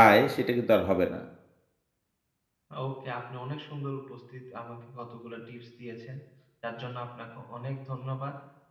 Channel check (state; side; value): identical; both; correlation 1.00